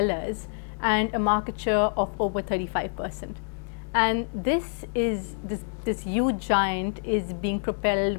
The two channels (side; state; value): right; silent; digital silence